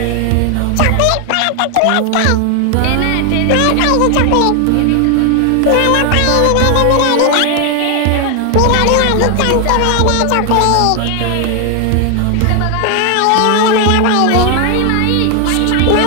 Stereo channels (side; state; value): both; different; correlation 0.00